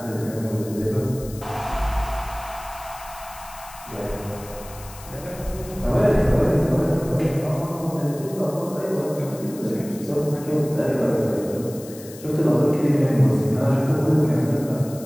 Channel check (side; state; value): left; noise; hiss, 17 dB below the sound